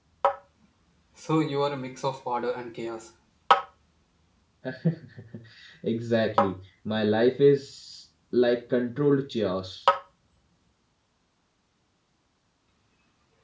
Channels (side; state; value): both; identical; correlation 1.00